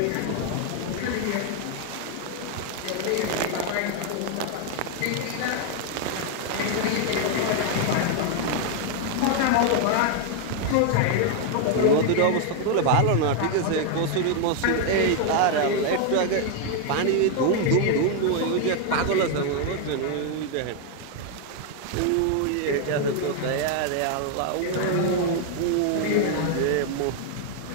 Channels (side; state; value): both; different; correlation 0.00